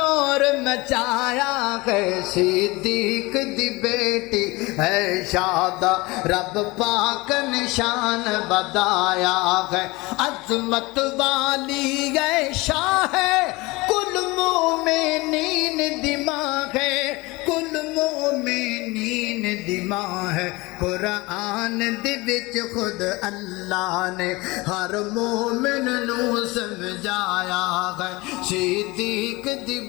मचाया है। सिद्दीक दी बेटी है यादा रब पाक निशान बताया है। अजमत वाली है शाह कुल मोमिनीन दिमाग है, कुल मोमिनीन दिमाग है। कुरान दे विच खुद अल्लाह ने हर मोमिन नू समझाया है। सिद्दीक दी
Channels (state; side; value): quieter; right; 22.9 dB